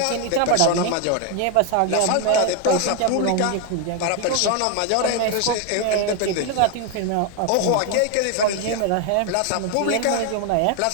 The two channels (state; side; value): different; both; correlation 0.01